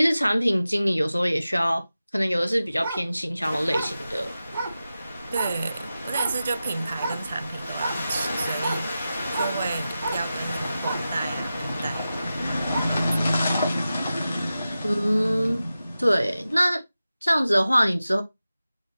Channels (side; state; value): both; inverted; correlation -0.93